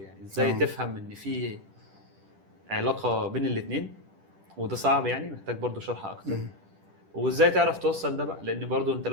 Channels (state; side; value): late; left; 10 ms